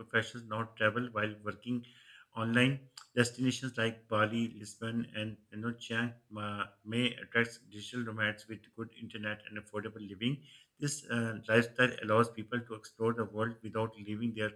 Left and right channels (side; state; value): both; identical; correlation 1.00